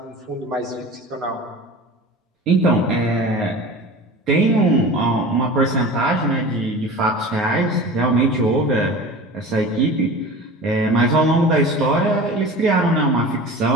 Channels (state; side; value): normal; both; correlation 0.36